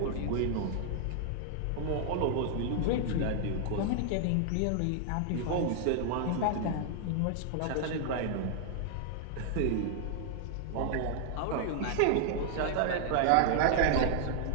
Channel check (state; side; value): different; both; correlation 0.00